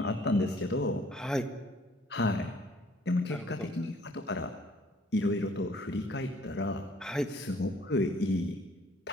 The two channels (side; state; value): both; normal; correlation 0.59